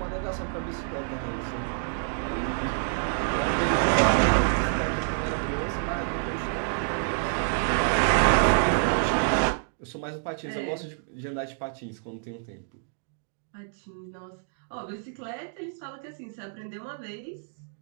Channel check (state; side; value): silent; left; digital silence